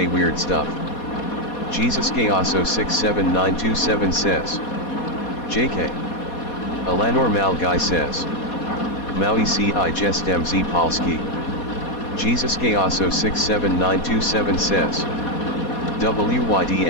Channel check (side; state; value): right; late; 4.2 ms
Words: weird stuff. Jesus Chaoso 67927 says. JK. Alanor Malguy says. Maui ci jest mz Polski. Jesus Chaoso 67927 says.